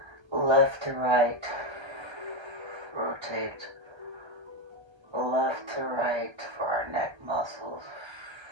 Left to right. Rotate left to right for our neck muscles.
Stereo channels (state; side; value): late; left; 1.3 ms